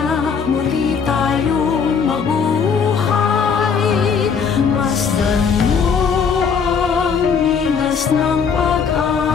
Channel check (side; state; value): right; quieter; 6.2 dB